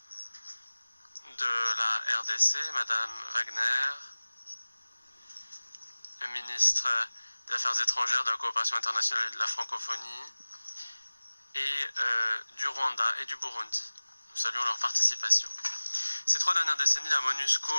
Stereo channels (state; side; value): inverted; both; correlation -1.00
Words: de la RDC, Mme Wagner, le ministre des Affaires étrangères, de la coopération internationale et de la francophonie, et du Rwanda et du Burundi. Nous saluons leur participation. Ces 3 dernières décennies, la